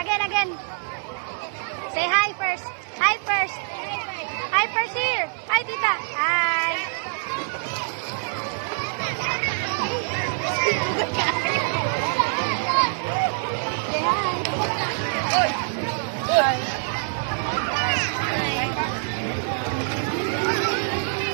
Again. Say hi first. Hi first. Hi first here. Hi, tita. Hi.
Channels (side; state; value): left; silent; digital silence